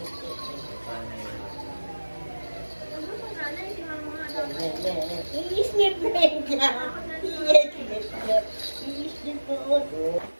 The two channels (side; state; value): both; inverted; correlation -1.00